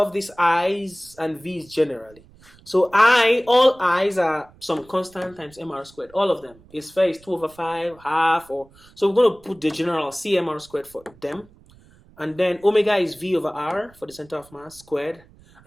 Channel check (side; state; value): right; noise; rumble, 26 dB below the sound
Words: these i's and v's generally. So all i's are some constant times mr squared. All of them. A sphere is 2 over 5, half, or so we're going to put the general cmr squared for them. And then omega is v over r for the center of mass squared.